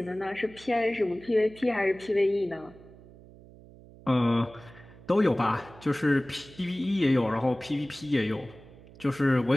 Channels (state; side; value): noise; right; hum, 21 dB below the sound